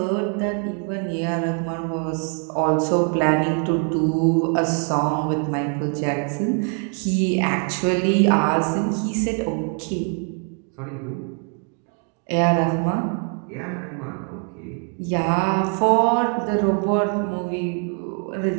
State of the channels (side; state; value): left; quieter; 39.9 dB